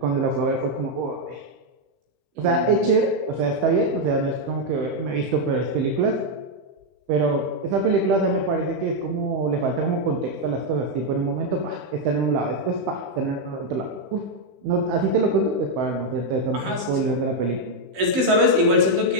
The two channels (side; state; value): left; late; 15 ms